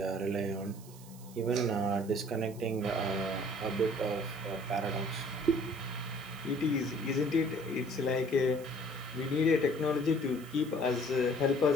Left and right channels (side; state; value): right; noise; hiss, 21 dB below the sound